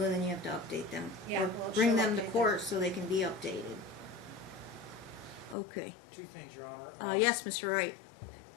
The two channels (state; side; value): drops out; right; at 5.6 s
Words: then you have to update them. Yeah, Or well, bring she'll them to update them. court so they can be updated. Okay. Two things, Your Honor. Yes, Mr. Wright.